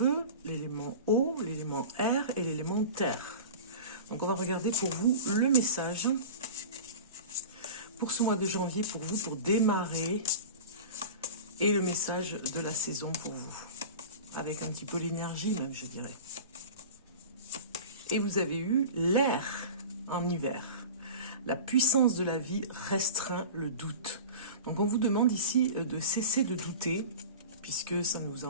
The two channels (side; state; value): both; inverted; correlation -0.34